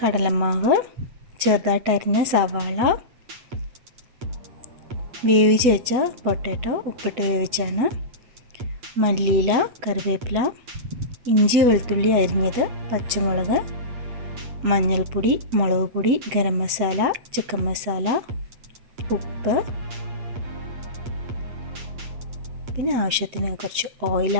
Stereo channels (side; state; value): left; late; 8.3 ms